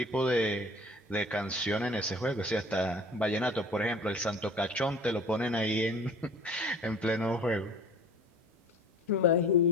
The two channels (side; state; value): both; normal; correlation 0.45